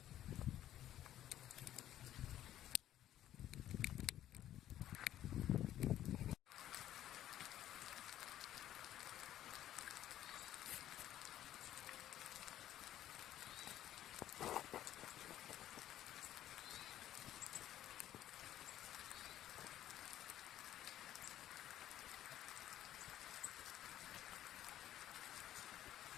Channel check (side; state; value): right; quieter; 12.3 dB